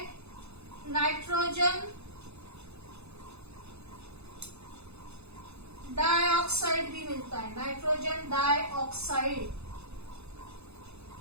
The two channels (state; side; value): late; left; 0.80 ms